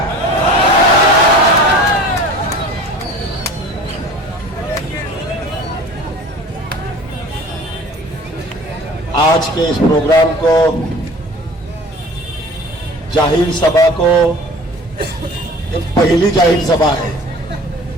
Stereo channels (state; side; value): normal; both; correlation 0.44